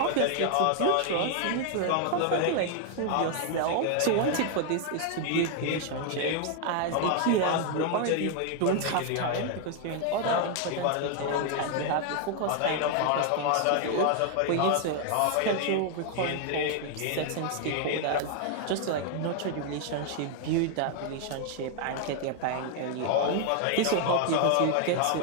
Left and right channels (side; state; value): both; different; correlation 0.00